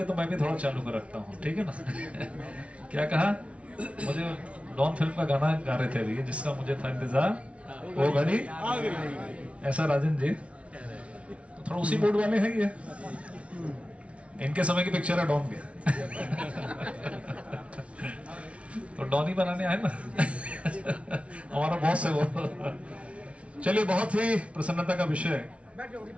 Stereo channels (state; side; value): late; left; 0.062 ms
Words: तो मैं भी थोड़ा चालू कर रखता हूँ, ठीक है ना। क्या कहा, मुझे डॉन फिल्म का गाना गा रहे थे अभी, जिसका मुझे था इंतजार, वो घड़ी ऐसा। राजन जी तो थोड़ा उसी बोर्ड वाले हैं ये, इनके समय की पिक्चर है डॉन के। तो डॉन ही बनाने आए ना। हमारा बॉस है वो। चलिए, बहुत ही प्रसन्नता का विषय